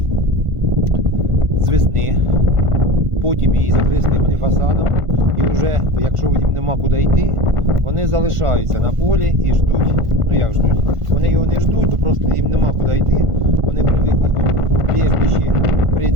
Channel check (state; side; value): late; left; 1.5 ms